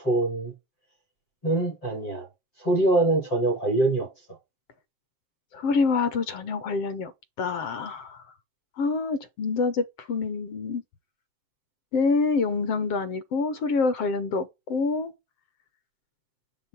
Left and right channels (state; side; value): late; right; 7.6 ms